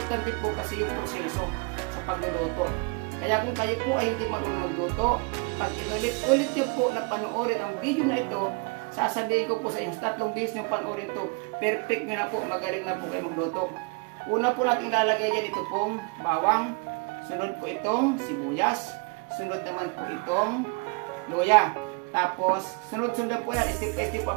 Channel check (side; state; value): left; quieter; 32.3 dB